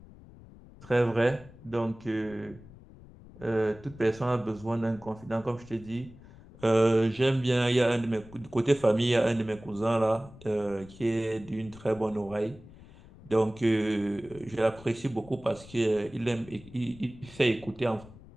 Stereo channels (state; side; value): noise; left; rumble, 20 dB below the sound